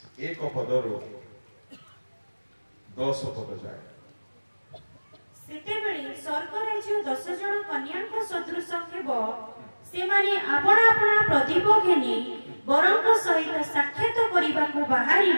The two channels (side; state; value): both; inverted; correlation -1.00